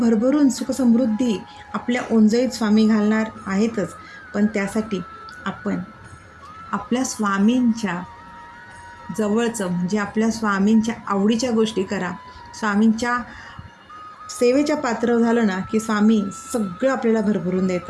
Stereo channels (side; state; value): both; identical; correlation 1.00